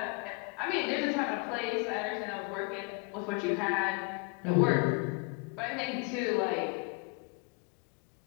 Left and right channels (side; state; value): right; quieter; 33.4 dB